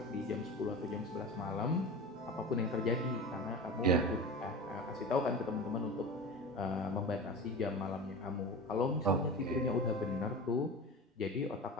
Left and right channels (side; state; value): both; normal; correlation 0.30